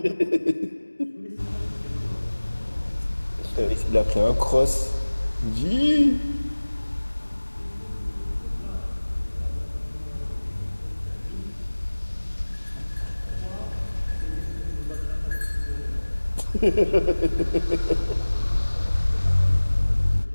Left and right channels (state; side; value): inverted; both; correlation -1.00